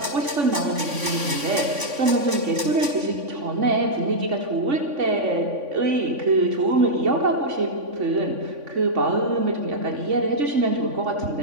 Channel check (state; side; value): late; left; 3.5 ms